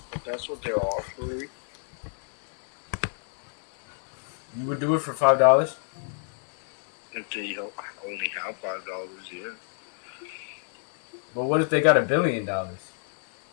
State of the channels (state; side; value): silent; right; digital silence